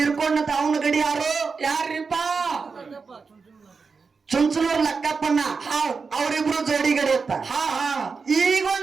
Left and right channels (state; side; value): quieter; left; 4.9 dB